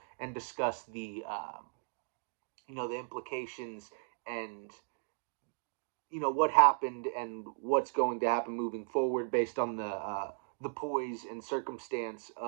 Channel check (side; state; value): left; silent; digital silence